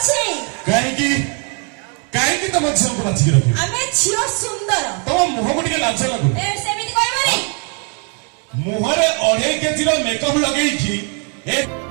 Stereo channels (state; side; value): quieter; left; 38.4 dB